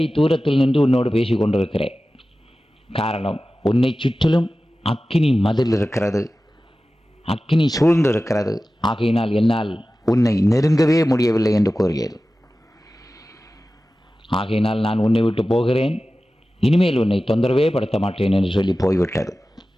தூரத்தில் நின்று உன்னோடு பேசி கொண்டிருக்கிறேன். காரணம், உன்னை சுற்றிலும் அக்கினி மதில் இருக்கிறது, அக்கினி சூழ்ந்து இருக்கிறது. ஆகையினால் என்னால் உன்னை நெருங்கவே முடியவில்லை என்று கூறியது. ஆகையினால் நான் உன்னை விட்டு போகிறேன், இனிமேல் உன்னை தொந்தரவே படுத்த மாட்டேன் என்று சொல்லி போய்விட்டது.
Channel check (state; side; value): normal; both; correlation 0.95